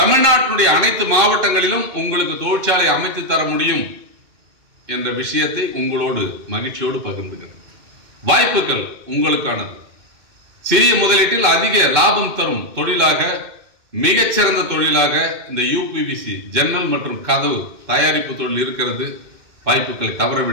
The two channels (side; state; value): left; late; 2.6 ms